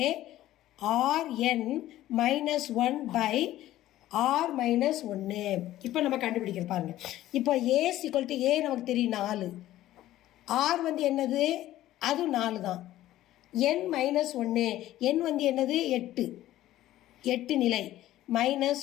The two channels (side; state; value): right; quieter; 14.4 dB